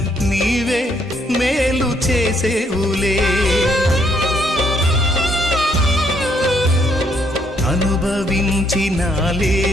నీవే మేలు చేసేవులే.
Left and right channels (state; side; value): normal; both; correlation 0.71